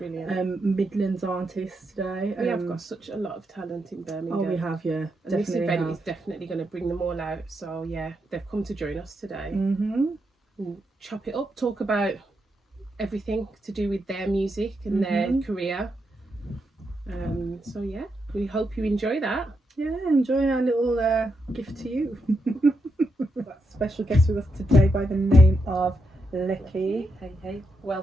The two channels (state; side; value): normal; both; correlation 0.83